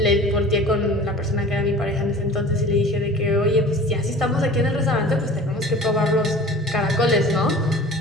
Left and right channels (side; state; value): both; normal; correlation 0.42